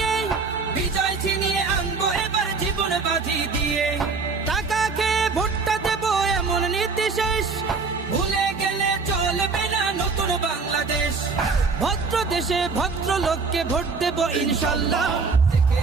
বিজয় ছিনিয়ে আনবো এবার জীবন বাজি দিয়ে। টাকা খেয়ে ভোটটা দেবো এমন নীতি শেষ, ভুলে গেলে চলবে না নতুন বাংলাদেশ। ভদ্র দেশে ভদ্র লোককে ভোট দেব ইনশাল্লাহ। দেখে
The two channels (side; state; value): left; quieter; 4.5 dB